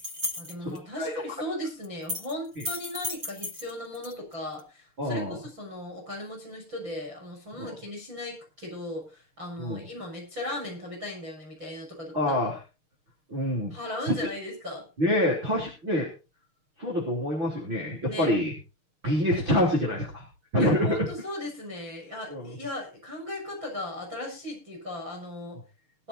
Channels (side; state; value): left; late; 6.5 ms